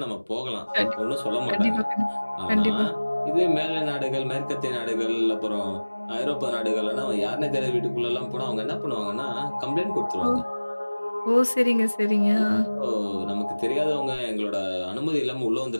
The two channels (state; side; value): inverted; both; correlation -1.00